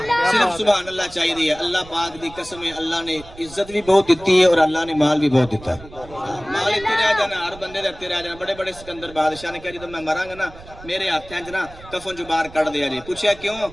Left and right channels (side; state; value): right; noise; rumble, 19 dB below the sound